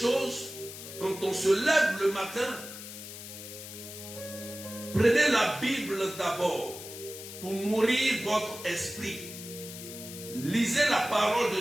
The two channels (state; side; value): noise; left; hiss, 12 dB below the sound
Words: quand on se lève le matin, prenez la Bible d'abord pour nourrir votre esprit. Lisez la parole